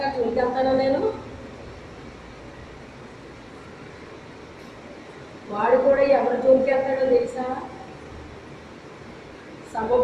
జోలికి వెళ్తాను నేను. వాడు కూడా ఎవరి జోలికి వెళ్తాడో తెలుసా?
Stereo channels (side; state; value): both; identical; correlation 1.00